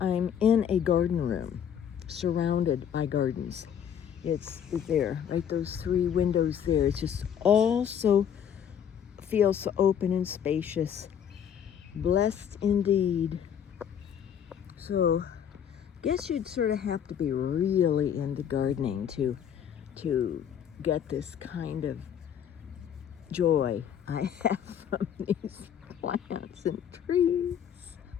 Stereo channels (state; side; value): quieter; right; 8.7 dB